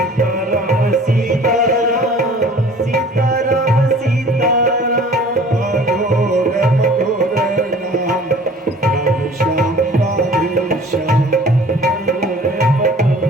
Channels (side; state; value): both; normal; correlation 0.48